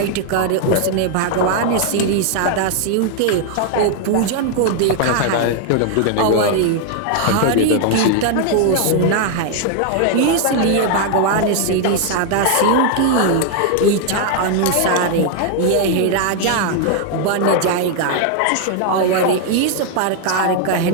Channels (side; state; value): both; different; correlation 0.00